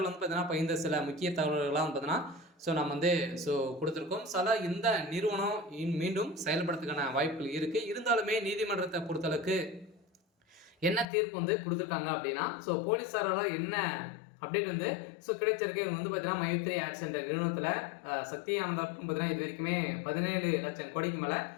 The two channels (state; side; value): drops out; right; at 11.1 s